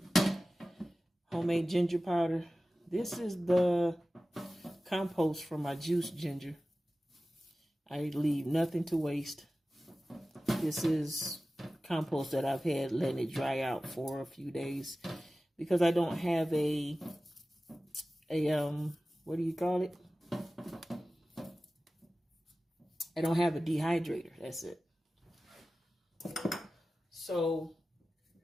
homemade ginger powder. This is the compost from my juiced ginger. I leave nothing to waste. This is compost that I've had letting it dry out for a few days because I don't have a what do you call it? I don't have a dehydrator. That's it. So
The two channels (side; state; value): both; normal; correlation 0.96